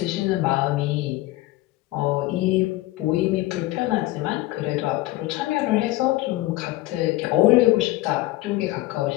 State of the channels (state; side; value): quieter; right; 18.0 dB